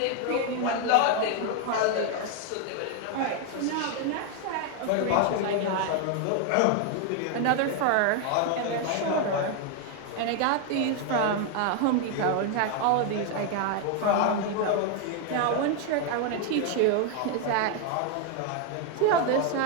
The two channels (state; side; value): different; both; correlation 0.01